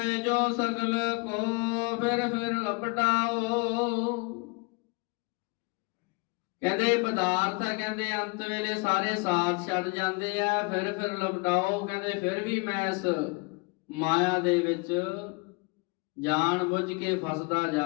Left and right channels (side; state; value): right; quieter; 29.4 dB